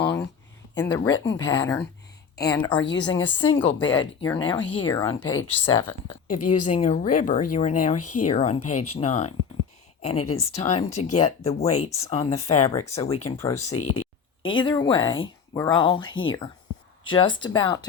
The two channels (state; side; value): quieter; right; 6.3 dB